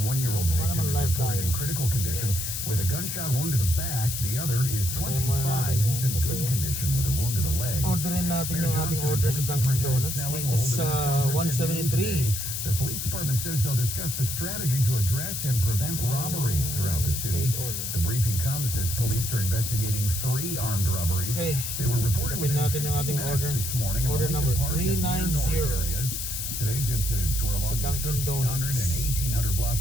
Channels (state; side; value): noise; left; hiss, 3 dB below the sound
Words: victim is reported in critical condition with a gunshot wound to the back. The other is 25. He's in good condition with a wound to the leg. Orderin natin yung ating order sa Dunkin Donuts dito sa 173. The police department says they'll discuss the strategy to address and prevent robberies throughout the city. The briefing comes as police are investigating 3 armed robberies. Okay. They were reported Tapin natin yung ating order. Order number 390. Today's incidents were along the 1,300 and 1,800